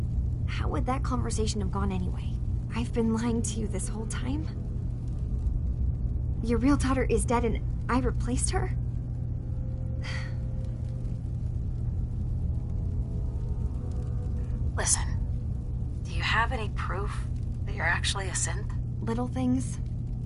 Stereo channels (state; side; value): identical; both; correlation 1.00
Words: How would that conversation have gone anyway? I've been lying to you this whole time? Your real daughter is dead and I replaced her? Listen, do you have any proof that you're actually a synth? Little things.